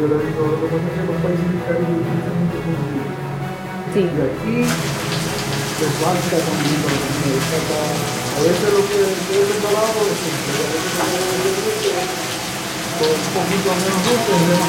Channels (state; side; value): identical; both; correlation 1.00